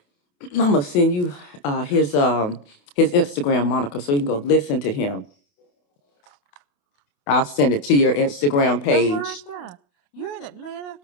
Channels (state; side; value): late; right; 28 ms